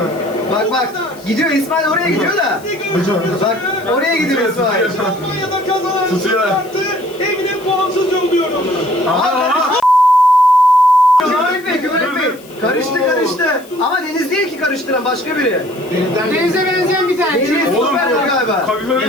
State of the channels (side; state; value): left; noise; hiss, 23 dB below the sound